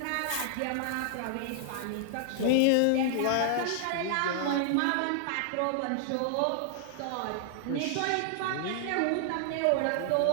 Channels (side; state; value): both; different; correlation 0.00